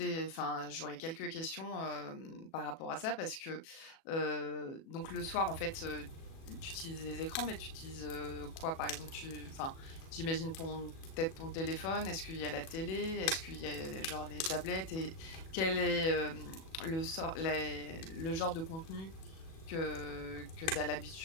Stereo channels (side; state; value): right; late; 37 ms